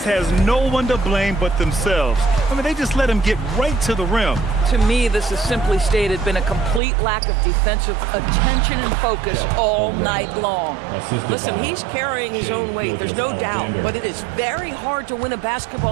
has no one to blame but themselves. I mean, they just let him get right to the rim. To me, this has simply stated been a complete lack of defensive attention and focus all night long. Listen, he's carrying his own weight, there's no doubt, but it is very hard to win a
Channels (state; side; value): drops out; left; at 6.8 s